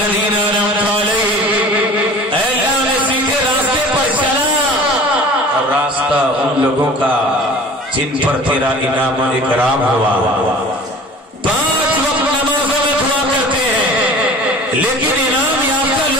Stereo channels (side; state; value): both; normal; correlation 0.42